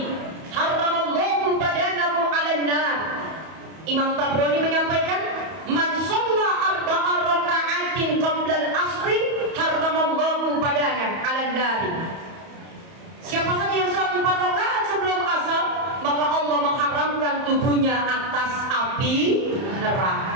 haramallahu badanahu 'alan nar. Imam Tabrani menyampaikan, man sholla arba'a raka'atin qabla al-asri haramallahu badanahu 'alan nar. Siapa saja yang sholat 4 rakaat sebelum asar, maka Allah mengharamkan tubuhnya atas api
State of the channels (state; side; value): late; left; 31 ms